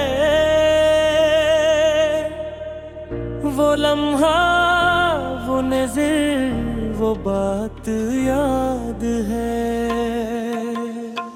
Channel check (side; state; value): both; identical; correlation 1.00